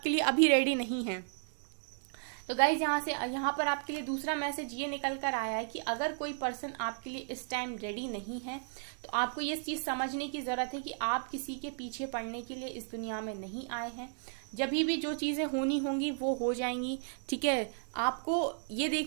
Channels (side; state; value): left; silent; 55 dB below the other